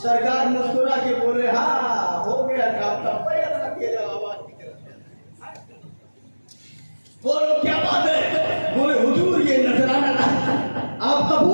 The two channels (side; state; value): both; inverted; correlation -1.00